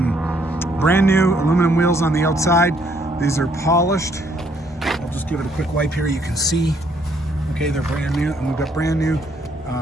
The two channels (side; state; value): both; normal; correlation 0.68